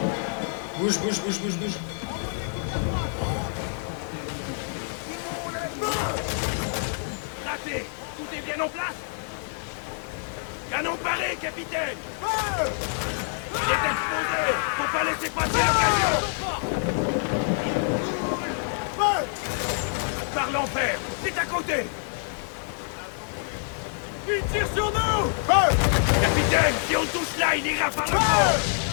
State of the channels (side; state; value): right; silent; 60 dB below the other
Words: Bouge, bouge, bouge, bouge, bouge. Raté. Tout est bien en place. Canon paré, capitaine. Il est exposé. Faut pas laisser passer l'occasion. Par l'enfer. C'est à côté. Il tire sur nous. Capitaine, si on touche là, il ira par le fond.